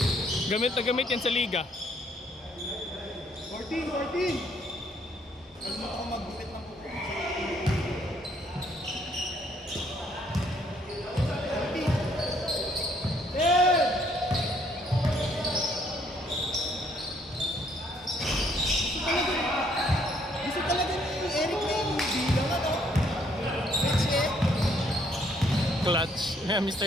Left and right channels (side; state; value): both; normal; correlation 0.67